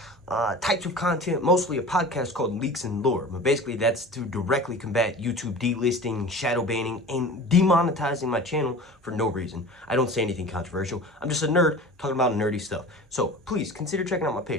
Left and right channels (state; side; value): normal; both; correlation 0.37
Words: types of content, mostly a podcast called Leaks and Lore. But basically, that's to directly combat YouTube delisting, shadow banning, and demonetizing my channel for no reason. I don't say anything controversial. I'm just a nerd talking about nerdy stuff. So please consider checking out my